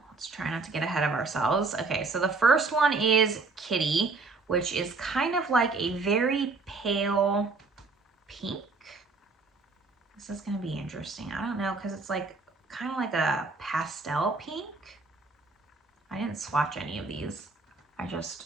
Let's try not to get ahead of ourselves. Okay, so the first one is Kitty, which is kind of like a very pale pink. This is gonna be interesting. I don't know, because it's like kind of like a pastel pink. I didn't swatch any of these. I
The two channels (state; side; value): quieter; left; 4.0 dB